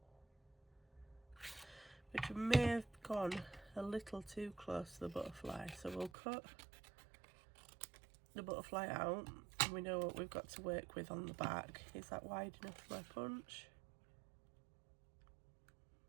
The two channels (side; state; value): left; drops out; at 6.1 s